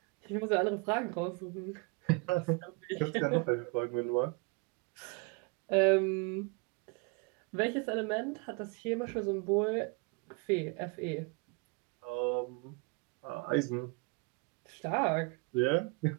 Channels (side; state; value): left; quieter; 29.4 dB